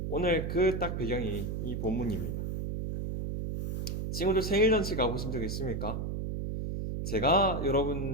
오늘 그 딱 배경이 이 본문입니다. 친구들 생일잔치 가보신 적 있습니까? 제가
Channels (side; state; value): right; noise; hum, 3 dB below the sound